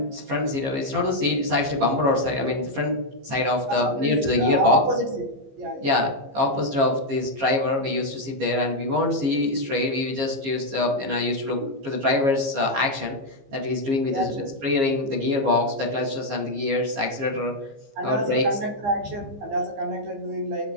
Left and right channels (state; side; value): late; left; 15 ms